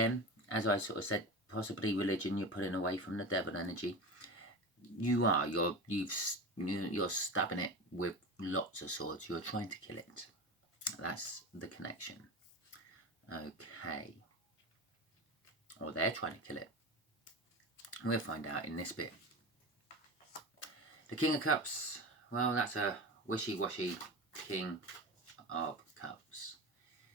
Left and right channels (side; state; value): both; normal; correlation 0.26